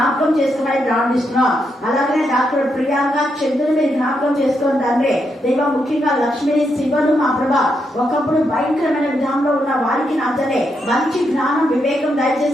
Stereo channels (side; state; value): both; normal; correlation 0.81